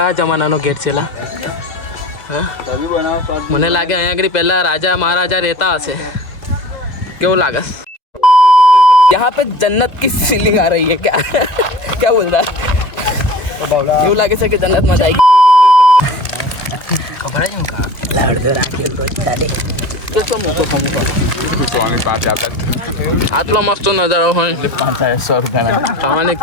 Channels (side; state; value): right; late; 2.2 ms